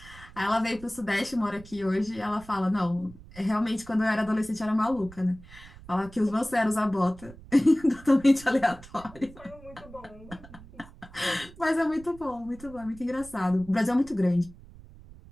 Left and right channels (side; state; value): right; noise; rumble, 19 dB below the sound